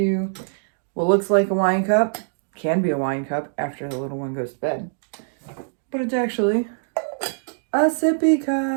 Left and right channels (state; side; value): silent; left; digital silence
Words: what looks like a wine cup. Can be a wine cup after the little one goes to bed. But it's actually a sippy